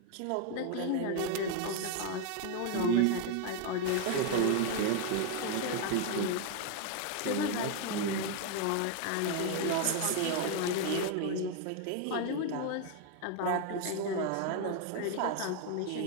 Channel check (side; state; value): both; different; correlation 0.01